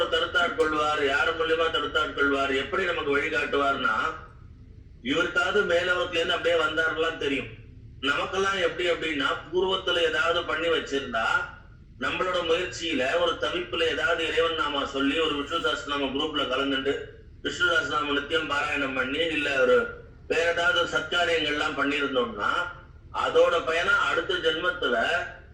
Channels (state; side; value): identical; both; correlation 1.00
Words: தடுத்தாட் கொள்வார், யாரு மூலியமா தடுத்தாட் கொள்வார், எப்படி நமக்கு வழிகாட்டுவார்னா, இவருக்காவது மேலவத்துல இருந்து அப்படியே வந்தாருலாம் தெரியும். நமக்கெல்லாம் எப்படி அப்படின்னா, பூர்வத்துல ஏதாவது பண்ணி வச்சிருந்தா நம்மளோட முயற்சியில ஒரு தவிப்புல ஏதாவது இறைவன் நாமா சொல்லி ஒரு விஷ்ணு சஹஸ்ரநாம குரூப்ல கலந்துட்டு விஷ்ணு சஹஸ்ரநாம நித்தியம் பாராயணம் பண்ணி இல்ல ஒரு வேற ஏதாவது சத்காரியங்கள்லாம் பண்ணியிருந்தோம்னா அதோட பயனா அடுத்த ஜென்மத்துல